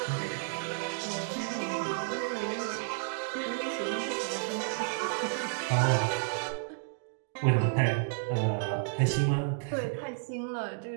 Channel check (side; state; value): left; silent; 57 dB below the other